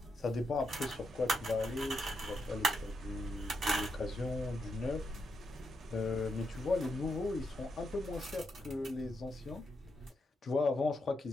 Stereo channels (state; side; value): normal; both; correlation 0.82